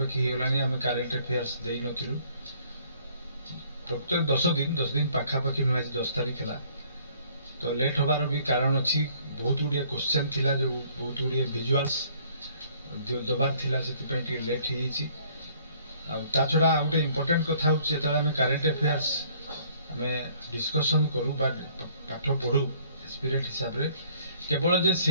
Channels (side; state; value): both; inverted; correlation -0.60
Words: होलानी आमे करेंट अफेयर्स देई नथिलु। प्रकृत 10 दिन पाखापाखि न आज 10 तारीख हला। तो लेट होबार भी कारण अछि, बहुत गुडिया क्वेश्चन थिला जो बहुत गुडिया विजुअल्स दबार थिला, सेति पई टी लेट हो जाइछि। आ ता छडा आ गोटे इंपोर्टेंट कथा होछि, जेतला आमे करेंट अफेयर्स आमे डिस्कशन करू बा पाठ पढू स्पिरिट हिसाब रे, केवल जे